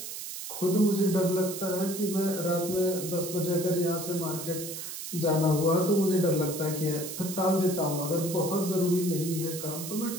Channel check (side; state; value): right; noise; hiss, 8 dB below the sound